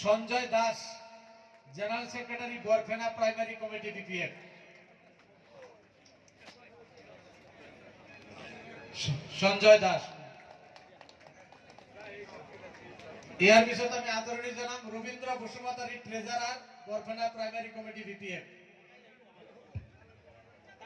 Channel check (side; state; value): both; identical; correlation 1.00